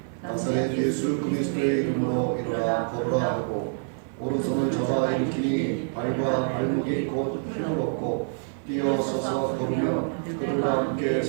나사렛 예수 그리스도의 이름으로 일어나 걸으라 하고 오른손을 잡아 일으키니 발과 발목이 곧 힘을 얻고 뛰어 서서 걸으며 그들과 함께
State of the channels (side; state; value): left; silent; 57 dB below the other